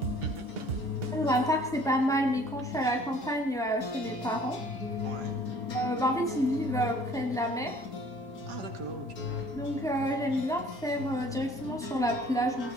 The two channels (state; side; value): normal; both; correlation 0.54